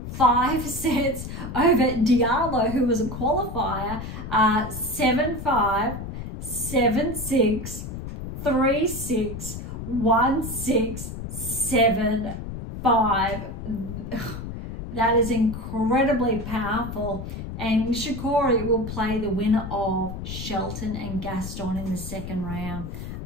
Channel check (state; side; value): noise; left; rumble, 8 dB below the sound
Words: 5 sets over Diallo, who was a qualifier, 7-5, 7-6, 3-6, 1-6, 7-5. That is incredibly powerful. And Nishikori will play the winner of Shelton and Gaston in the 2nd round.